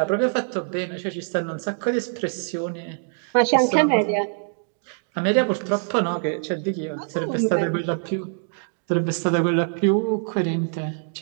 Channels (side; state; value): left; silent; 63 dB below the other